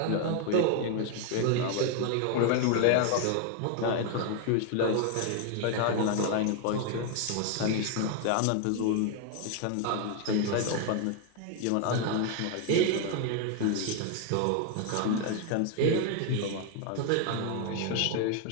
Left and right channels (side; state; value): both; different; correlation 0.00